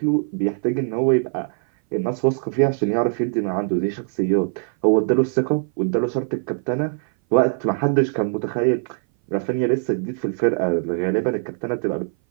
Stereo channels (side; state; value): left; silent; 59 dB below the other